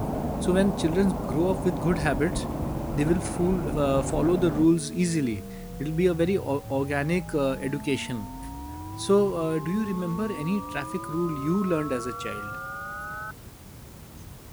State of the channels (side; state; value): both; identical; correlation 1.00